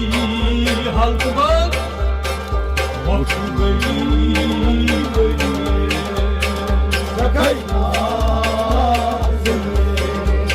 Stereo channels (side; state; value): both; identical; correlation 1.00